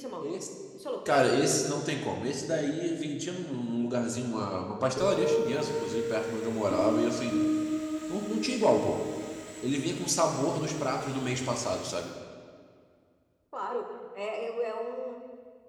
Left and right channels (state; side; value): identical; both; correlation 1.00